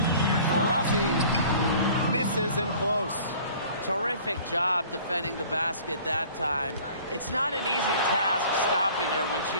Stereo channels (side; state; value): both; inverted; correlation -0.49